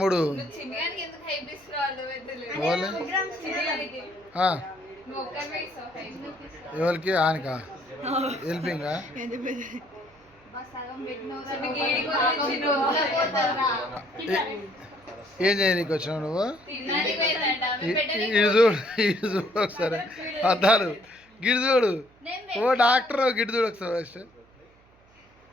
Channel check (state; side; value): noise; right; hum, 30 dB below the sound